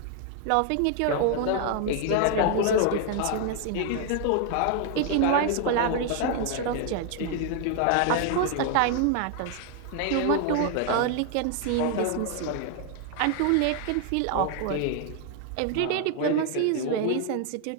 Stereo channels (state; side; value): different; both; correlation 0.00